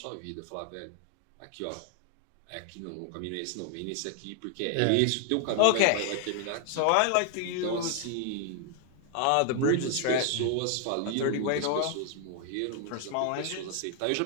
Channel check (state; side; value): different; both; correlation 0.00